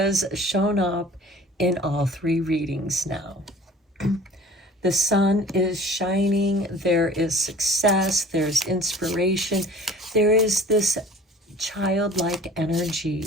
shown up in all 3 readings now. The sun is shining, there is success, there's inspiration, there is this childlike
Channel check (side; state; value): both; normal; correlation 0.45